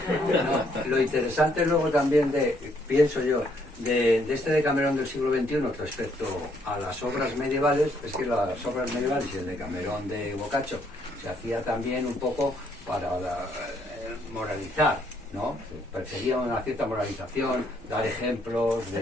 Lo interesante luego también pienso yo, de este Decamerón del siglo XXI respecto a las obras medievales, es que las obras medievales y el Decamerón de Boccaccio se hacía también un poco para moralizar, ¿no? Perseguía una cierta moralización, dar ejemplos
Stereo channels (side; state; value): both; normal; correlation 0.70